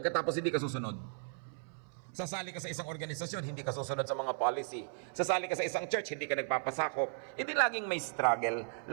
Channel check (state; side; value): silent; left; 54 dB below the other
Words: hindi ka susunod. Sasali ka sa isang organisasyon, hindi ka susunod sa mga policy. Sasali ka sa isang church, hindi ka nagpapasakop. Hindi laging may struggle,